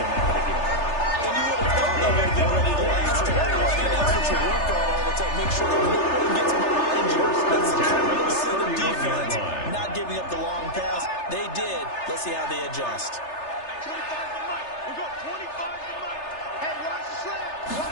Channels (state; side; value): late; right; 3.3 ms